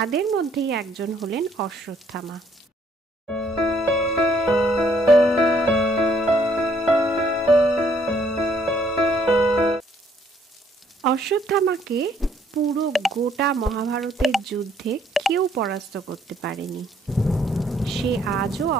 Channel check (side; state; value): both; normal; correlation 0.66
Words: মধ্যেই একজন হলেন অশ্বত্থামা। অশ্বত্থামাকে পুরো গোটা মহাভারতের যুদ্ধে কেউ পরাস্ত করতে পারেনি। সে আজও